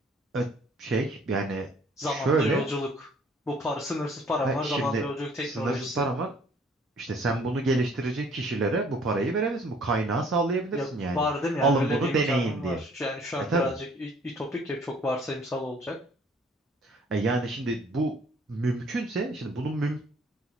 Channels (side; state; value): both; normal; correlation 0.57